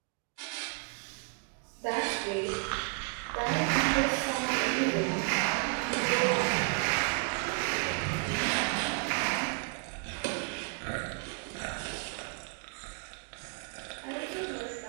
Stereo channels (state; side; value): quieter; left; 36.3 dB